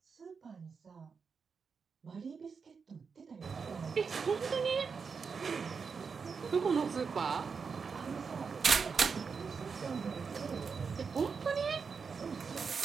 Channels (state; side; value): quieter; left; 5.6 dB